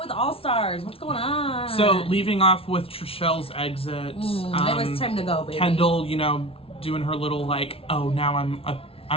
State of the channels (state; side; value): late; right; 0.27 ms